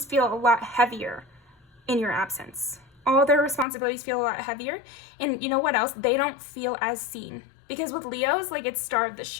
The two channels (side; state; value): right; drops out; at 3.7 s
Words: feel a lot heavier in your absence. All their responsibilities feel a lot heavier, and you know what else? They don't feel as seen, because with Leos, like, it's star of the